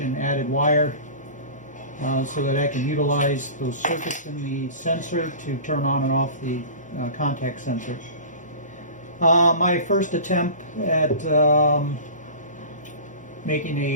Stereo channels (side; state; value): both; inverted; correlation -0.36